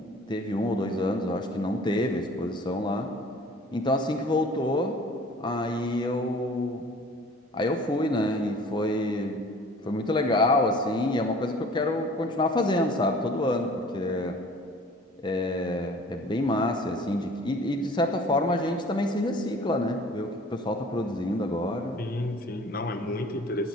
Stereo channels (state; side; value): normal; both; correlation 0.48